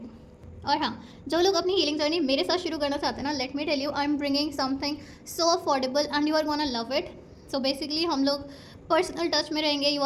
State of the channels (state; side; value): identical; both; correlation 1.00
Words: और हाँ, जो लोग अपनी हीलिंग जर्नी मेरे साथ शुरू करना चाहते हैं ना, let me tell you, I am bringing something so affordable and you are gonna love it. So basically हम लोग पर्सनल टच में रहेंगे, you